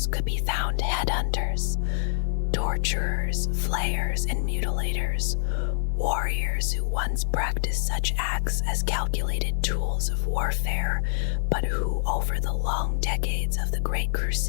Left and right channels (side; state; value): right; silent; digital silence